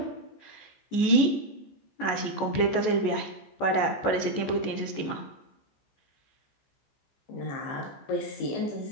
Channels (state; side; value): late; right; 14 ms